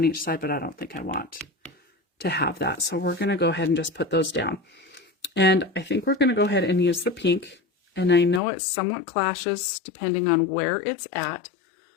each side, but I don't think I want to have that. So we're going to go ahead and just put those down. And I think we're going to go ahead and use the pink. And I know it somewhat clashes depending on where it's at.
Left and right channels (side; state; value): right; drops out; at 8.4 s